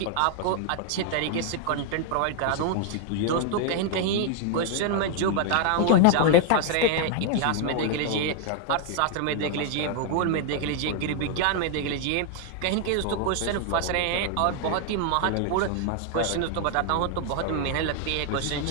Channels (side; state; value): both; different; correlation 0.00